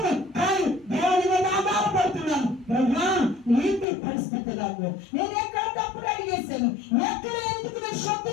కానీ దేవుని మీద ఆధారపడుతున్నాను. ఏంటి పరిస్థితి నాకు? నేను ఎక్కడ తప్పుడు అడిగేశాను? ఎక్కడ ఎందుకు నేను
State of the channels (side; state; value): right; drops out; at 3.9 s